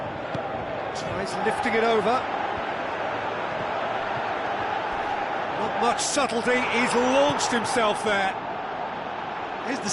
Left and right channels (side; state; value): both; identical; correlation 1.00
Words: tries lifting it over. Not much subtlety, he's launched himself there. His